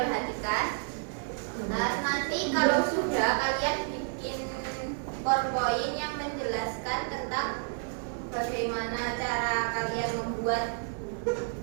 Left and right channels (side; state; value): left; silent; 58 dB below the other